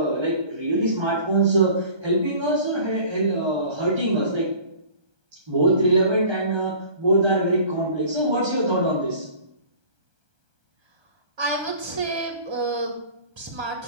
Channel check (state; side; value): late; left; 1.3 ms